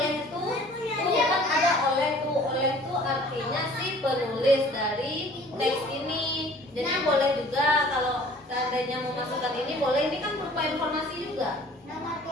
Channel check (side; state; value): both; normal; correlation 0.51